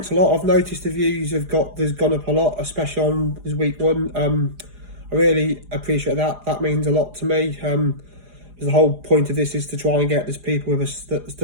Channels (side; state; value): left; late; 4.9 ms